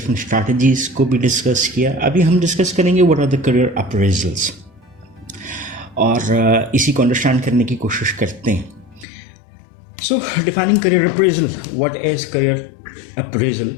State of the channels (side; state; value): right; drops out; at 9.1 s